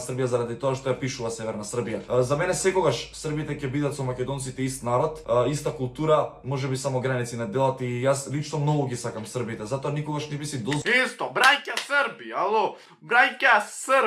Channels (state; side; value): identical; both; correlation 1.00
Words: заради тоа што ја пишува Северна Србија. За мене секогаш србите ќе бидат со македонците ист народ, иста култура, можеби само граници не делат и јас лично многу ги сакам србите, затоа никогаш не би си Исто, браќа Срби, ало, браќа